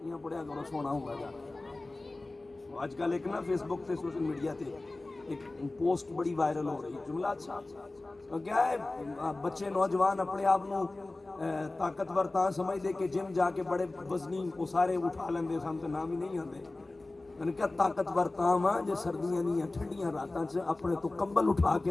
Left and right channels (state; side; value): quieter; right; 3.0 dB